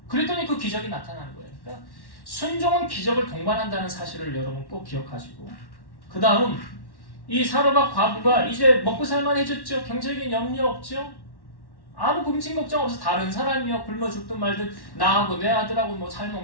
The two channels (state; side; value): late; right; 1.1 ms